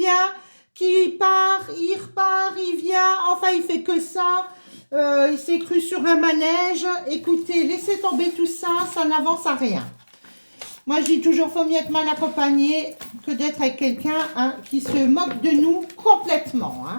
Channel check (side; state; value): both; inverted; correlation -1.00